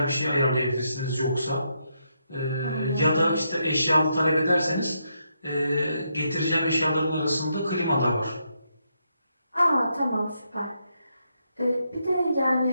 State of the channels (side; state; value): both; inverted; correlation -0.80